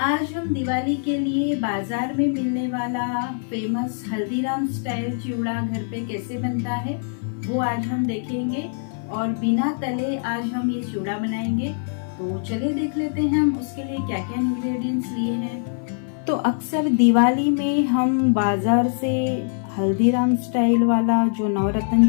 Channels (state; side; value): silent; right; 58 dB below the other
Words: आज हम दिवाली के लिए बाजार में मिलने वाला फेमस हल्दीराम स्टाइल चिवड़ा घर पे कैसे बनता है वो आज हम देखेंगे और बिना तले आज हम ये चिवड़ा बनाएंगे। तो चलिए देख लेते हैं हम उसके लिए क्या क्या इंग्रेडिएंट्स लिए हैं। तो अक्सर दिवाली में हम बाजार से हल्दीराम स्टाइल वाला जो नवरत्न